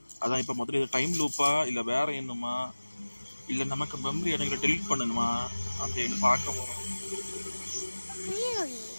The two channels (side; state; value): both; inverted; correlation -1.00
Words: அதான் இப்போ முதல்ல இது டைம் லூப்பா இல்லை வேற என்னமா இல்லை நமக்கு மெமரி இடங்களை டெலீட் பண்ணணுமா அப்படின்னு பார்க்க போகிறோம். Really?